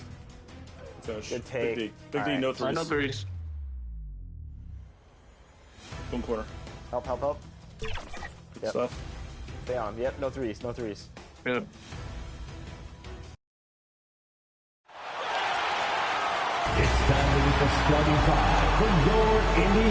Finish. Good take. Big D. Big D, no threes. No threes. Boom corner. Help, help, help. Good Yep. stuff. Stay on. Yep, no threes, no threes. Good. It's time to meet the starting five for your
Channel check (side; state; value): both; identical; correlation 1.00